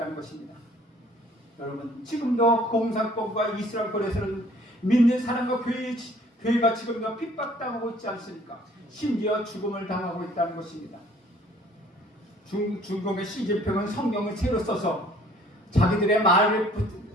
것입니다. 여러분, 지금도 공산권과 이스라엘권에서는 믿는 사람과 교회가 지금도 핍박당하고 있지 않습니까? 심지어 죽음을 당하고 있다는 것입니다. 중국의 시진핑은 성경을 새로 써서 자기들의 마음에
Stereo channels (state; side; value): normal; both; correlation 0.56